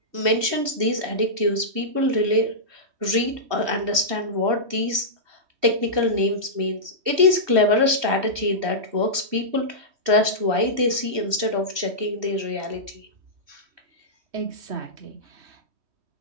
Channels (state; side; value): late; left; 3.1 ms